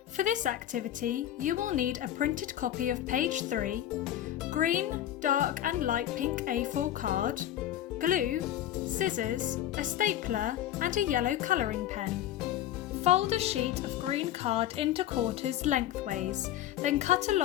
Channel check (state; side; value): quieter; right; 12.1 dB